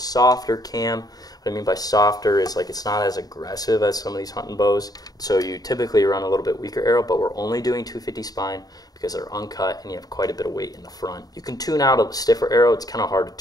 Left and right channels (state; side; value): late; right; 0.18 ms